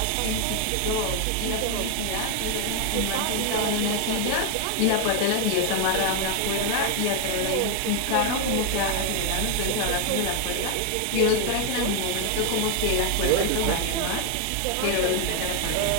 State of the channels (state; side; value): different; both; correlation 0.01